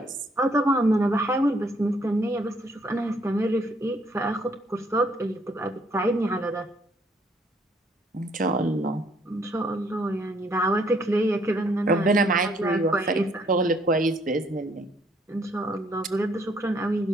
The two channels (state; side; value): normal; both; correlation 0.66